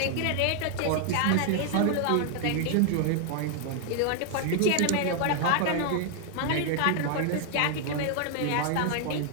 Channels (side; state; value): both; different; correlation 0.00